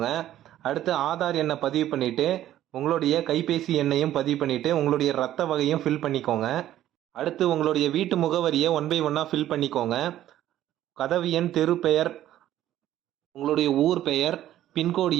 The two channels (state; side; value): quieter; left; 12.8 dB